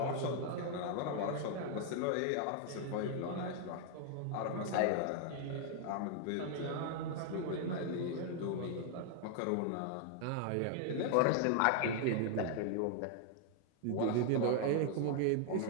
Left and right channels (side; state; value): both; different; correlation 0.00